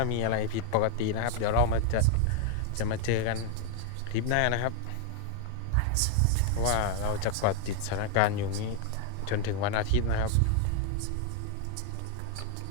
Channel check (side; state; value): both; different; correlation 0.00